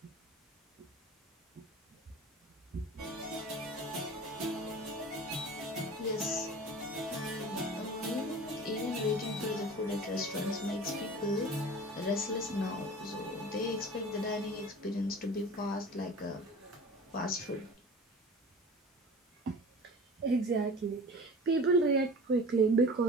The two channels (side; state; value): both; normal; correlation 0.39